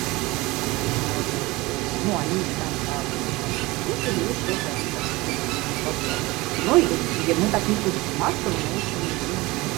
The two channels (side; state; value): left; quieter; 21.7 dB